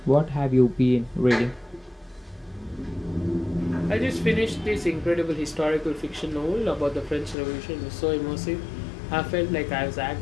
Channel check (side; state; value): right; drops out; at 7.4 s